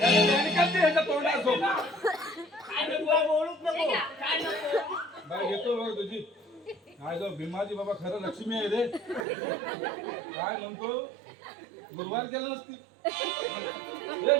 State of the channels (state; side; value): drops out; left; at 9.2 s